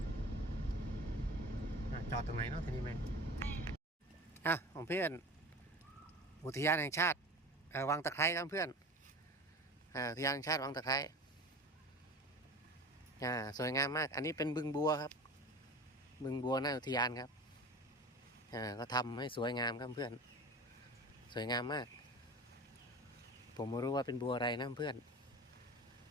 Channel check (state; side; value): normal; both; correlation 0.35